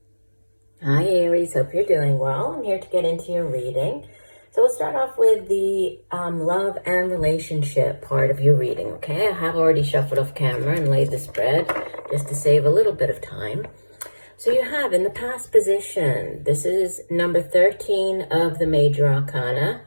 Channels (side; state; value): both; inverted; correlation -1.00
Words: Hi Aries, hope you're doing well. I'm here to get into your reading. So we'll start off with the love and relationship part of your reading, okay? I have already shuffled off camera and laid the spread just to save a little bit of time. So you have in the past position, this is number 13 of the Major Arcana,